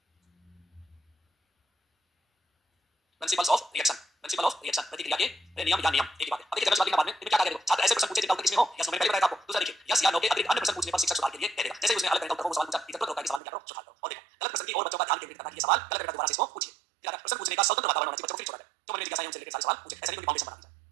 प्रिंसिपल्स ऑफ रिएक्शन प्रतिक्रिया के नियम या नियम एक ही बात है। अब देखिए जनरल बाद में क्या क्या करेगा? छात्र ऐसे प्रश्न पूछे जिनका उत्तर किसमें हो या मैंने पहले बताया था आपको। दूसरा देखिए यस या नो के अतिरिक्त अन्य प्रश्न पूछने पर शिक्षक सुधार के लिए कहेगा। जैसे उसने अलग तरह का उत्तर को सवाल पूछा इधर तो होता है कि सवाल में क्या करो सुधार करो। और देखो गलत प्रश्न की और बच्चों का ध्यान केंद्रित करना कि ये सवाल गलत है दोबारा से इसको पूछिए। फिर प्रश्न पूछने का स्वतंत्र वातावरण होना चाहिए बच्चों को। फिर छोड़ा जाए जो मन में जिज्ञासा है उनसे रिलेटेड सारे सवाल पूछे। ऐसा नहीं कोई फाउंडेशन बना दीजिए।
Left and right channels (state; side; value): drops out; left; at 13.4 s